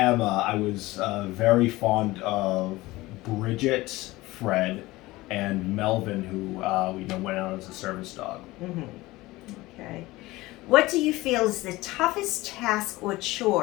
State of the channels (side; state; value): right; quieter; 19.4 dB